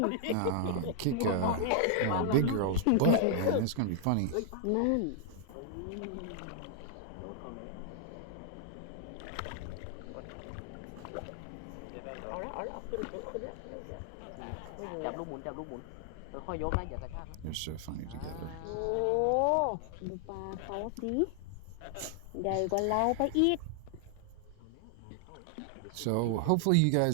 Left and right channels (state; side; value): different; both; correlation 0.00